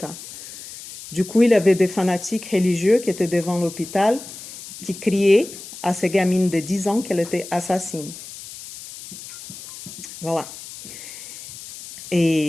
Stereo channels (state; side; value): noise; left; hiss, 14 dB below the sound